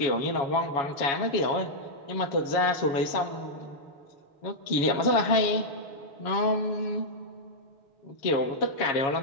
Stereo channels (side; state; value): right; late; 7.2 ms